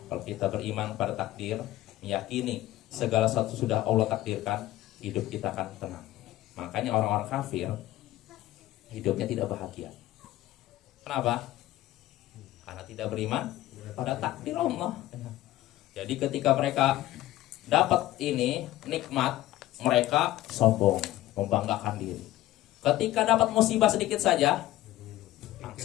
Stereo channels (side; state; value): right; quieter; 15.3 dB